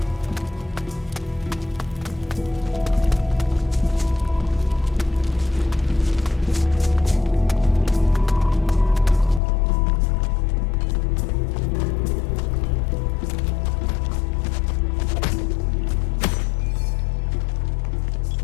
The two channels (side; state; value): right; drops out; at 9.4 s